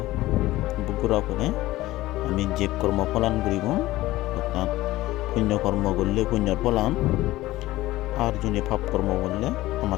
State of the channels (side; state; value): right; quieter; 17.2 dB